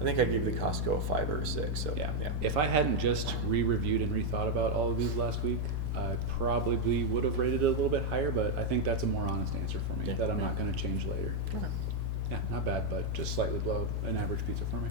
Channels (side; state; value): both; normal; correlation 0.01